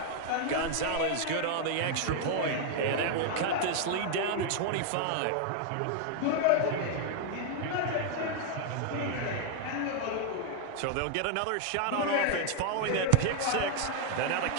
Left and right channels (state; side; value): different; both; correlation 0.00